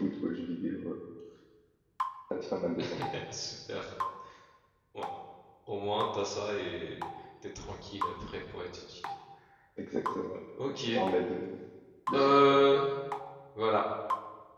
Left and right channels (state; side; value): identical; both; correlation 1.00